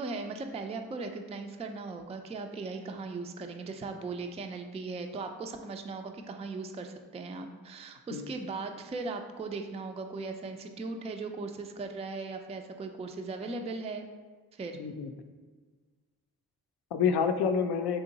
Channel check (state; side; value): normal; both; correlation 0.31